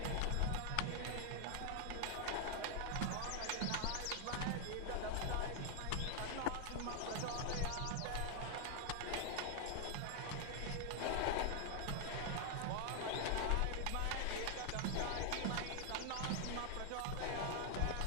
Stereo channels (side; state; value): both; different; correlation 0.00